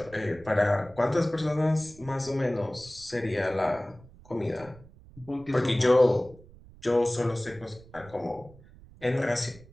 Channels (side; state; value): right; noise; rumble, 22 dB below the sound